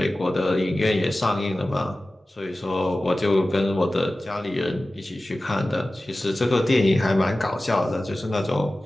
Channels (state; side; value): normal; both; correlation 0.96